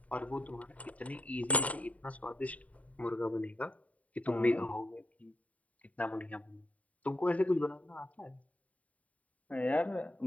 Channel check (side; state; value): right; late; 0.069 ms